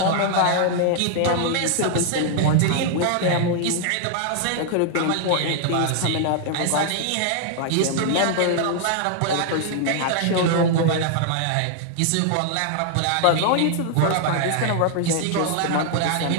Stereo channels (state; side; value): different; both; correlation 0.00